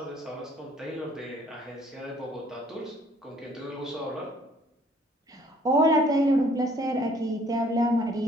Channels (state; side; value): normal; both; correlation 0.59